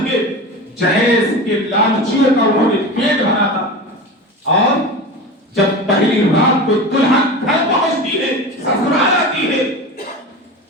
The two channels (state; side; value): normal; both; correlation 0.28